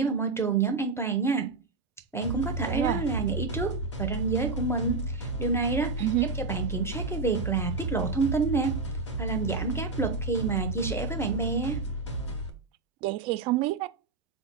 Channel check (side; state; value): left; quieter; 4.0 dB